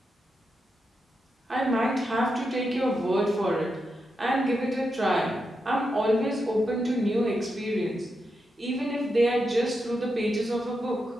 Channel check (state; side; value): normal; both; correlation 0.86